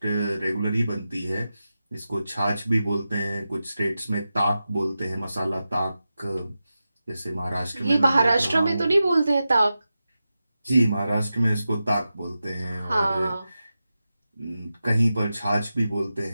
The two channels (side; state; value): both; inverted; correlation -0.92